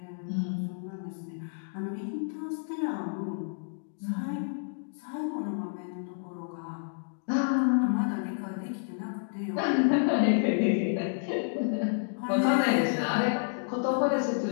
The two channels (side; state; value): right; silent; digital silence